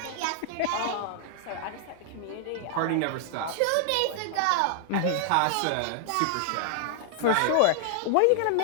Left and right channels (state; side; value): different; both; correlation -0.01